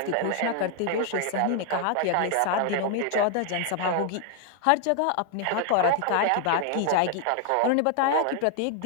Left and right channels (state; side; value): different; both; correlation 0.00